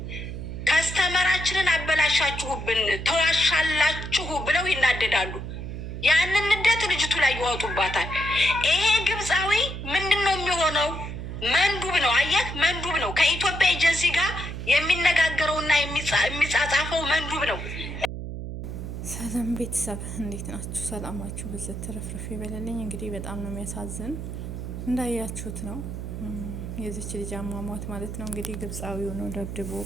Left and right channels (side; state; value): right; noise; hum, 7 dB below the sound